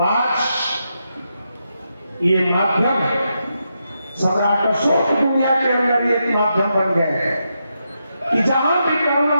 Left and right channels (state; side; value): inverted; both; correlation -0.84